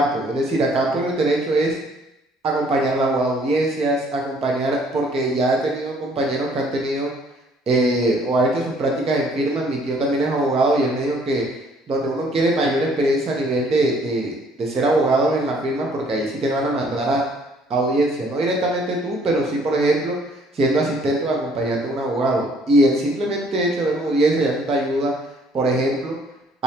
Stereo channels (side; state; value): both; normal; correlation 0.61